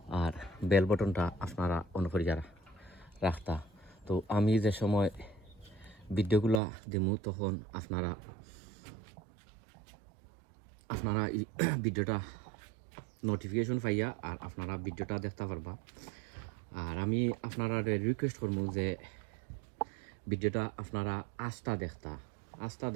আর বেল বটনটা আপনারা অন করিয়া রাখতা। তো আমি যে সময় ভিডিওগুলা দেমু তখন আপনারা ভিডিওটা নোটিফিকেশন পাইয়া আর আপনারা ভিডিওটা দেখতে পারবা। আর আমি আপনারা রিকোয়েস্ট করবো যে ভিডিওটা আপনারা আস্থা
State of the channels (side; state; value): left; drops out; at 6.6 s